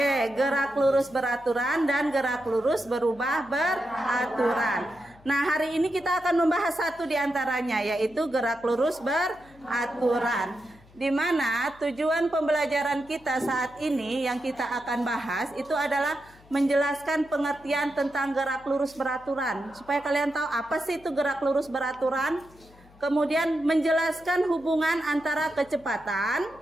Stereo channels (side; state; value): left; noise; hum, 26 dB below the sound